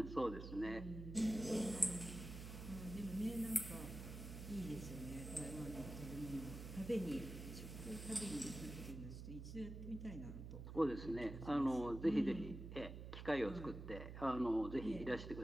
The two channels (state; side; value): noise; right; hum, 8 dB below the sound